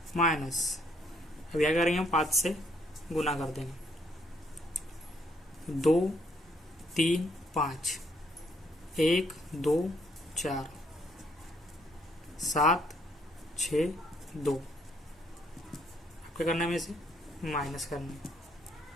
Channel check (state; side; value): normal; both; correlation 0.69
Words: माइनस। अब यहाँ करेंगे हम 5 से गुना कर देंगे, 2, 3, 5, 1, 2, 4, 7, 6, 2। क्या करना है? हमें इसे माइनस करना है,